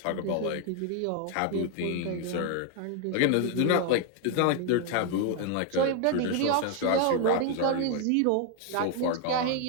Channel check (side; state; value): both; different; correlation 0.00